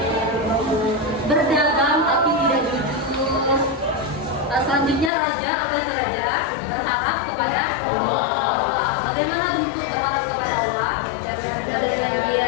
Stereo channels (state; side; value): drops out; right; at 5.1 s